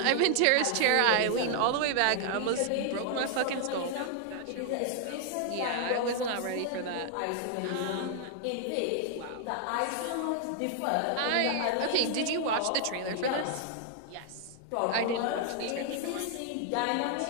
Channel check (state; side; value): different; both; correlation 0.00